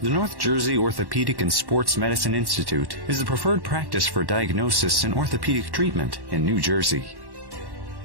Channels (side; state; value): left; late; 1.1 ms